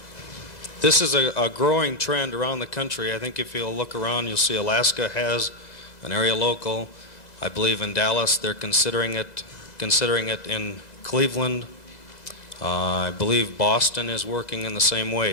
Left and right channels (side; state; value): right; late; 2.0 ms